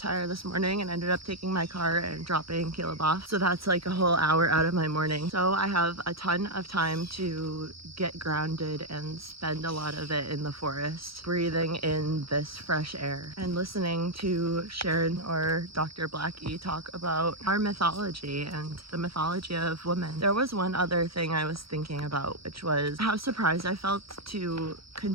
this morning and ended up taking my car and dropping Caleb off. So that's like a whole hour out of my morning. So I have a ton of time to get grounded and spend a lot of it in the forest, breathing in this fresh air and listening to Sharon or Dr. Blackie talk about our mythology and the mythology of women. There was one other thing I was thinking about, which was how surprised I felt to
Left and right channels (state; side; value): late; left; 0.75 ms